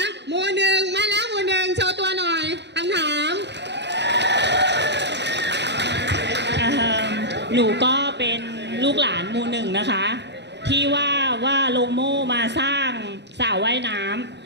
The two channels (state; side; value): late; left; 0.50 ms